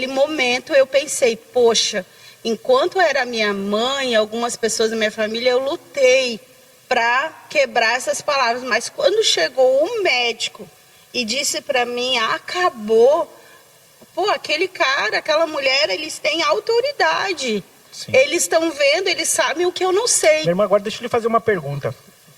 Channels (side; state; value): both; identical; correlation 1.00